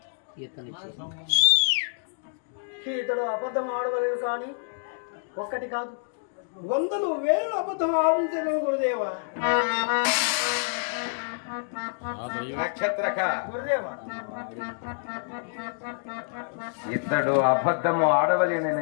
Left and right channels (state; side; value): silent; right; digital silence